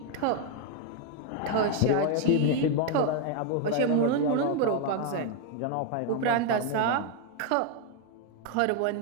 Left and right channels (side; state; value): both; different; correlation 0.00